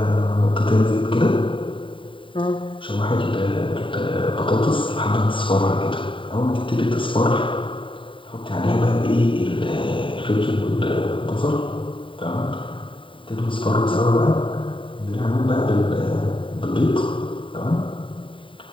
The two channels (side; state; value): right; late; 0.25 ms